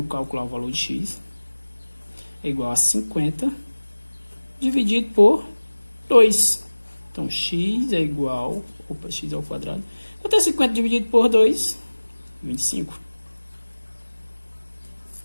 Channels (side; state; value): both; inverted; correlation -1.00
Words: que calcular o valor de x, é igual a 50 dividido por 2. Então, x é igual... Opa, x ao quadrado. Quanto é 50 dividido por 2? 25.